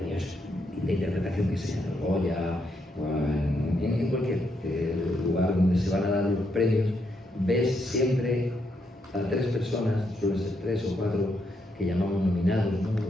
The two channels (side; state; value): both; normal; correlation 0.78